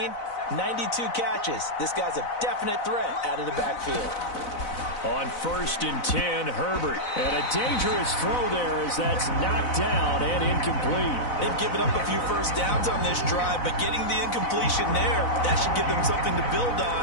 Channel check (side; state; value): right; late; 4.0 ms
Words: 92 catches. This guy's a definite threat out of the backfield. On 1st and 10, Herbert. And a dangerous throw there as that's knocked down and incomplete. They've given up a few first downs on this drive, but getting the incompletion there, that should give them something to build